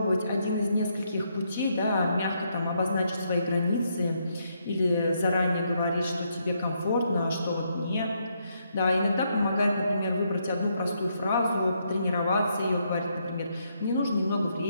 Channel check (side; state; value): both; inverted; correlation -0.76